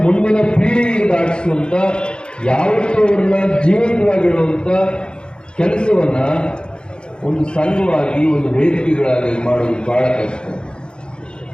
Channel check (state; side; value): late; right; 0.051 ms